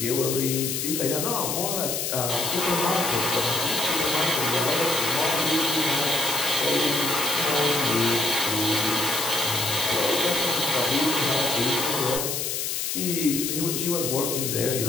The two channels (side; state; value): left; noise; hiss, 1 dB below the sound